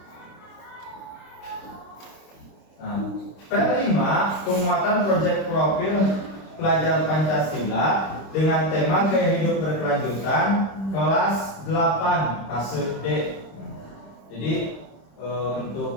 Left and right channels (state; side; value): late; right; 26 ms